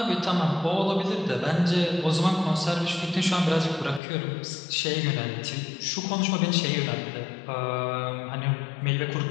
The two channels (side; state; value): right; drops out; at 4.0 s